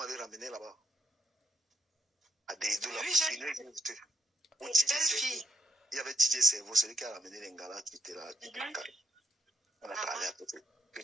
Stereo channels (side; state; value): both; normal; correlation 0.75